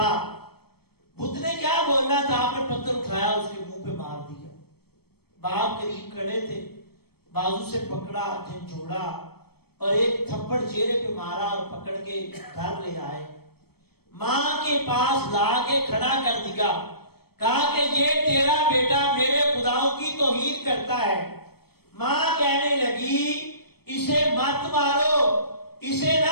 بت نے کیا بولنا تھا؟ آپ نے پتھر اٹھایا اس کے منہ پہ مار دیا۔ باپ قریب کھڑے تھے، بازو سے پکڑا، جھنجھوڑا اور ایک تھپڑ چہرے پہ مارا اور پکڑ کے گھر لے آئے، ماں کے پاس لا کے کھڑا کر دیا، کہا کہ یہ تیرا بیٹا میرے خداؤں کی توہین کرتا ہے۔ ماں کہنے لگی اسے مت مارو، اسے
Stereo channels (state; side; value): late; right; 0.96 ms